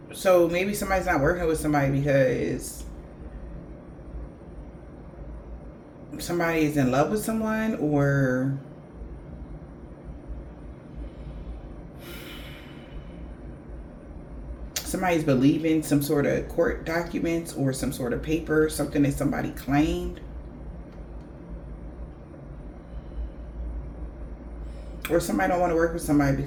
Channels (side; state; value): both; identical; correlation 1.00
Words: maybe somebody's not working with somebody because somebody is in love with someone, or somebody's believing some sort of court documents or some sort of paper, something that somebody claimed. Or somebody don't want to work with somebody